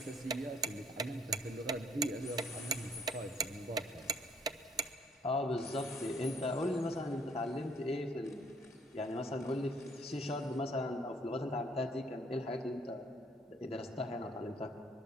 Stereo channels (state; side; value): normal; both; correlation 0.63